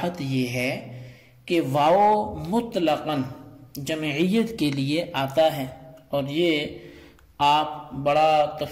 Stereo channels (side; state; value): both; identical; correlation 1.00